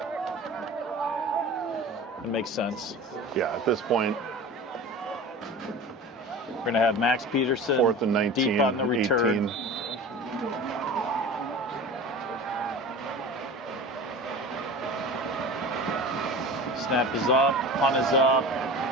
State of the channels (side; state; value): both; normal; correlation 0.35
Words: It makes sense. Yeah, at this point, We're going to have Max Peterson 4th and 19, deep on the return. 18. Snap is up, punt is up.